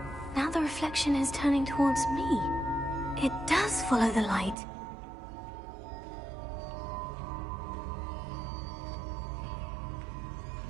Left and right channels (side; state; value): left; drops out; at 4.5 s